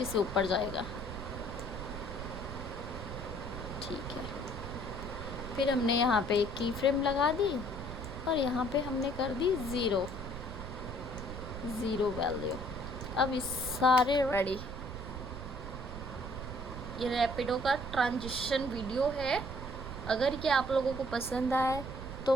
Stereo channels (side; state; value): right; noise; rumble, 8 dB below the sound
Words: से ऊपर जाएगा, ठीक है। फिर हमने यहाँ पे एक की फ्रेम लगा दी और यहाँ पे हमने कर दी 0 वैल्यू। अब इस सारे रेडी। ये रैपिडो का ट्रांजिशन वीडियो है। अगर ये आप लोगों को पसंद आए तो